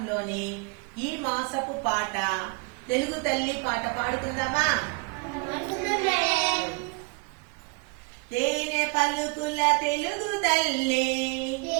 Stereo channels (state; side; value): quieter; left; 32.1 dB